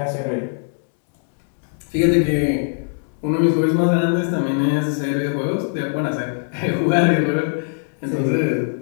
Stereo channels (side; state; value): right; silent; digital silence